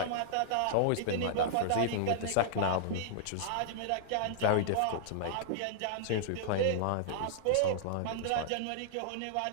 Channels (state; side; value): different; both; correlation -0.01